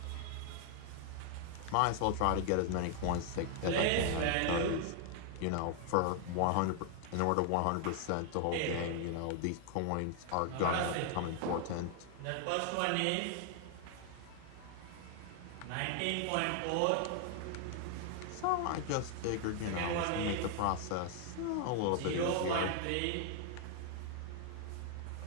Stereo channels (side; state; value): both; different; correlation 0.00